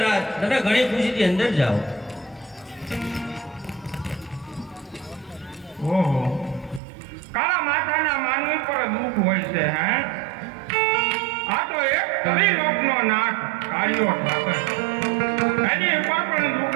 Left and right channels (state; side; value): drops out; left; at 6.8 s